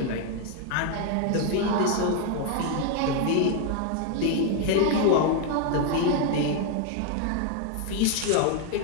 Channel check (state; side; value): different; both; correlation 0.00